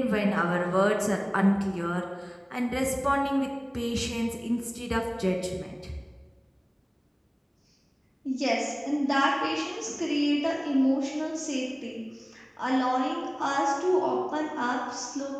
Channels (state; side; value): identical; both; correlation 1.00